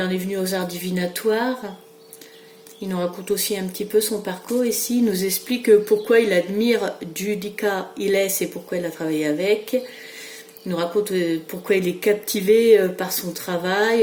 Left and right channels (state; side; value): identical; both; correlation 1.00